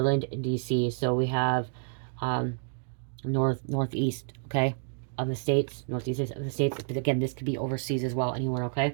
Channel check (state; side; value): silent; left; digital silence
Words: and DC. So we have um, northeast, okay, of the states, northeast of the states. But again, this could be overseas as well, anywhere, okay?